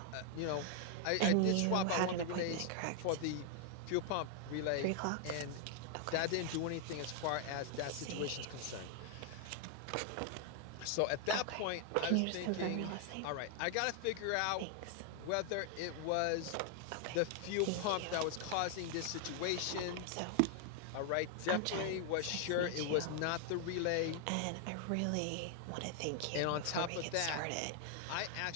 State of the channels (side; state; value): both; different; correlation 0.00